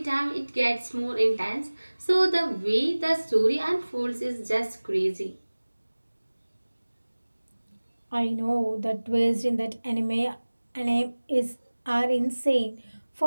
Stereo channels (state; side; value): inverted; both; correlation -1.00